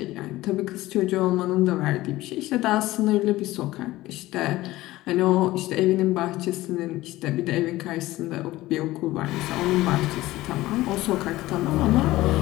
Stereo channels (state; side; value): quieter; right; 17.3 dB